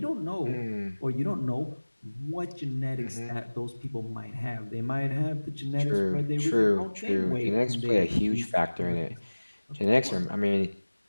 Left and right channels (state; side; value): inverted; both; correlation -1.00